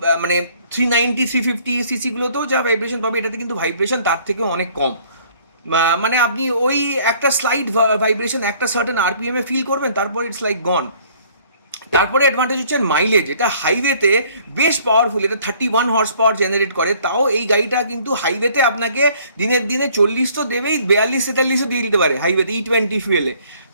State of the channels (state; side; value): inverted; both; correlation -0.58